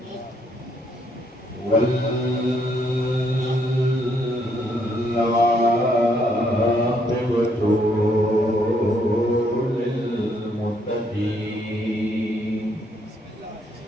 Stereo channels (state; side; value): normal; both; correlation 0.72